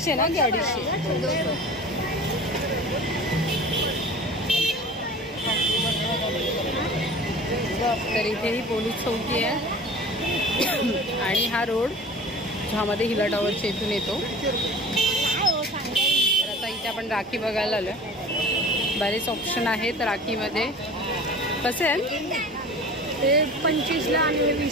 ना की 250? तर इथे ही पोलीस चौकी आहे. आणि हा रोड ज्यामध्ये हिला टॉवरच्या इथून येतो. तर आता इथे आपण राखी बघायला आलो. बरेच ऑप्शन आहेत राखीमध्ये. कसे आहेत ते 25ला आणि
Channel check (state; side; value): normal; both; correlation 0.40